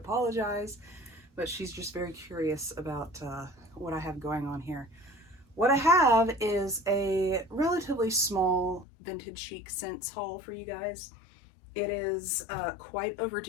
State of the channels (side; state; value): right; drops out; at 8.8 s